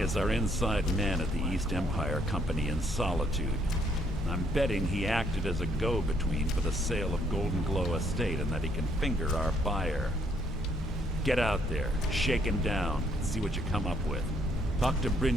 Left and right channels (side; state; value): both; normal; correlation 0.69